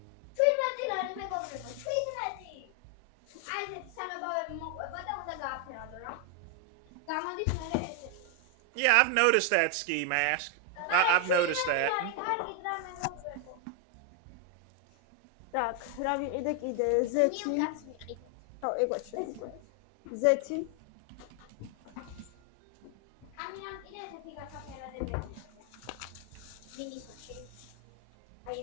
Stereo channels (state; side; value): different; both; correlation 0.00